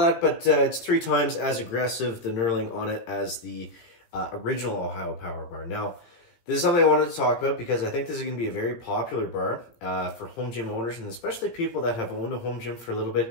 but it's 3 times as aggressive, the knurling on it, as the original Ohio Power Bar. Now, this is something I wanted to talk about because I think this is going to be a very popular bar for home gym owners, and especially people that have owned a home gym for a little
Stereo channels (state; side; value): late; right; 17 ms